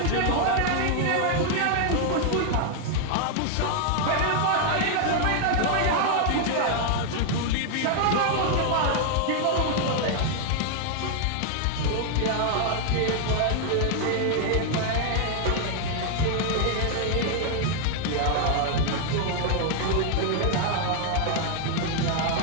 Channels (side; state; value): both; different; correlation 0.00